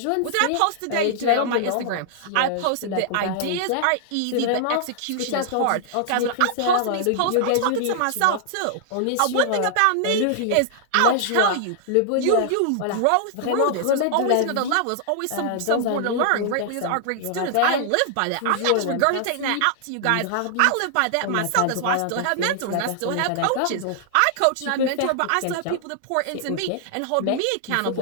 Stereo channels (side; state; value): both; different; correlation -0.01